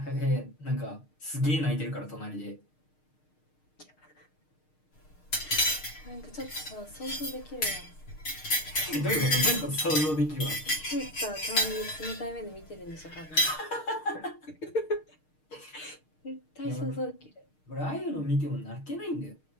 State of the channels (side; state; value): right; late; 6.5 ms